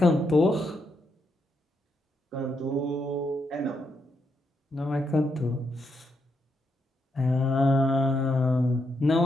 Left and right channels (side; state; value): both; normal; correlation 0.80